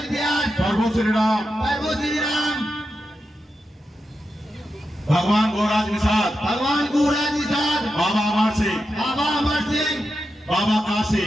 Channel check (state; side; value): normal; both; correlation 0.88